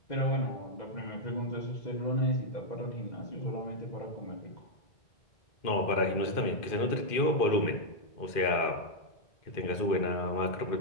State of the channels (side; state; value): right; late; 2.4 ms